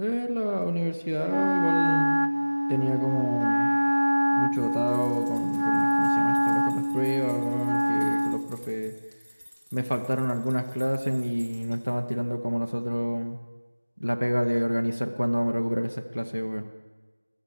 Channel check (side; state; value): both; inverted; correlation -1.00